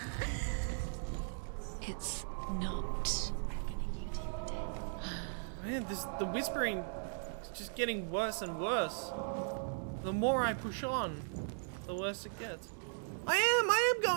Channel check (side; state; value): left; silent; digital silence